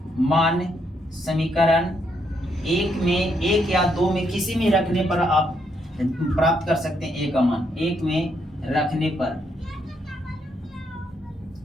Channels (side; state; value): both; normal; correlation 0.76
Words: मान समीकरण 1 में 1 या 2 में किसी में रखने पर आप प्राप्त कर सकते हैं। a का मान 1 में रखने पर,